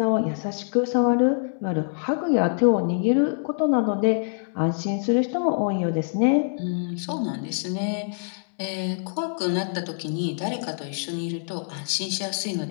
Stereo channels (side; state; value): right; silent; 62 dB below the other